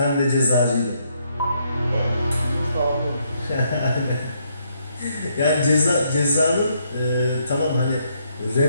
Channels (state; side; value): inverted; both; correlation -0.74